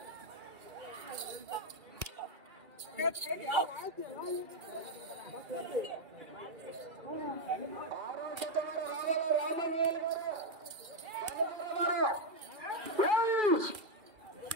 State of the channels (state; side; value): late; left; 2.3 ms